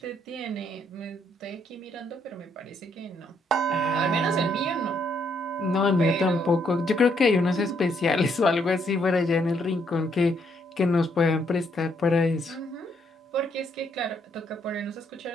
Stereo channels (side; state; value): both; normal; correlation 0.72